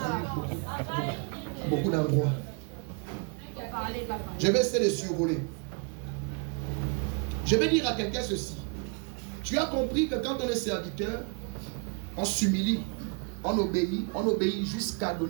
beaucoup d'endroits? Je vais essayer de survoler. Je vais dire à quelqu'un ceci. Tu as compris que quand on est serviteur, on s'humilie, on obéit jusqu'à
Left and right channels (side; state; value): left; quieter; 35.5 dB